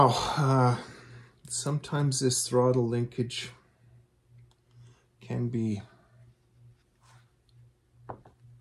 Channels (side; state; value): both; identical; correlation 1.00